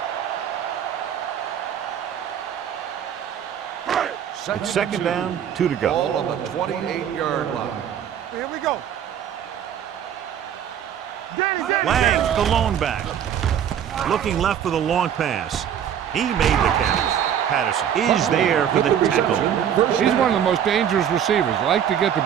It's second down, 2 to go. Ball on the 28-yard line. Here we go. Danny. Lang, the lone back. Looking left for the long pass. He made the catch. Patterson is there for the tackle. He's one of the most dangerous receivers. Like to get the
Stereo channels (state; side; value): quieter; left; 9.2 dB